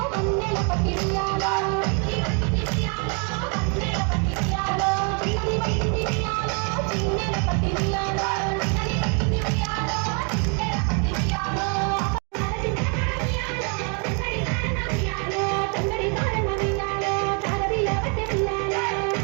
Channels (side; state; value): left; quieter; 37.5 dB